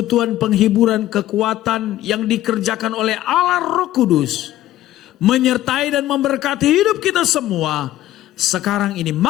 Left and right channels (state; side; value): quieter; right; 14.0 dB